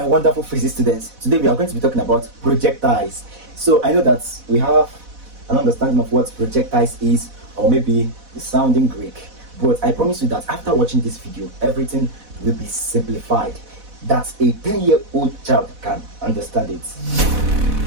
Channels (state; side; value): late; left; 4.1 ms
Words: wonderful physics students. Today we are going to be talking about projectiles. So I know that we have an understanding of what projectiles is, or maybe it's sounding Greek. But I promise you that after watching this video, everything will be simplified. That a 10-year-old child can understand it.